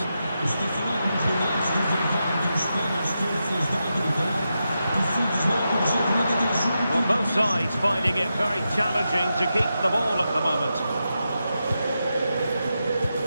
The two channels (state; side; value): inverted; both; correlation -0.88